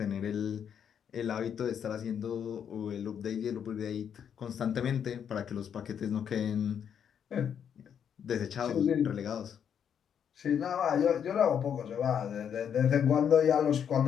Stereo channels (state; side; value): quieter; right; 8.2 dB